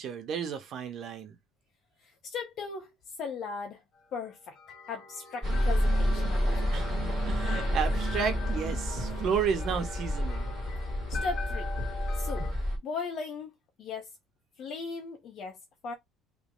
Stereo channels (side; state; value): both; normal; correlation 0.78